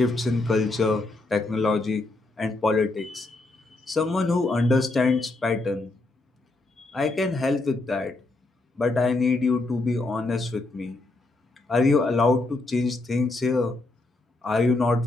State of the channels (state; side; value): quieter; right; 3.0 dB